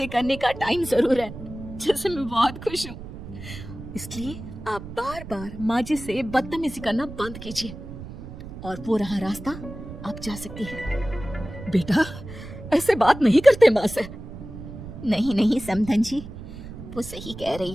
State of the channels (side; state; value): right; noise; rumble, 12 dB below the sound